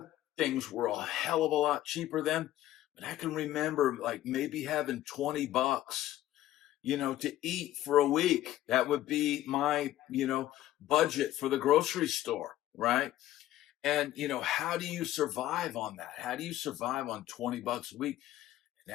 Things were a hell of a lot cheaper then, but I can remember like maybe having 20 bucks to eat for a week. That would be my, budget for the grocery store, right? And, how do you survive on that? How do you survive on 20 bucks a week?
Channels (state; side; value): quieter; right; 13.9 dB